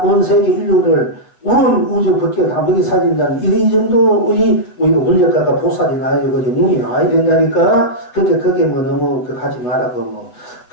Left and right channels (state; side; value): late; right; 8.2 ms